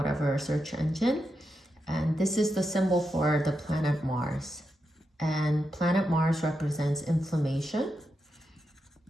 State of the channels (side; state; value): both; normal; correlation 0.86